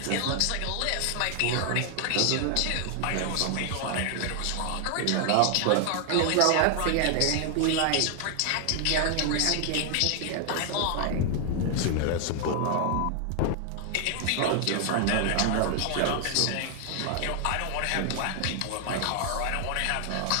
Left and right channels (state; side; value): different; both; correlation 0.00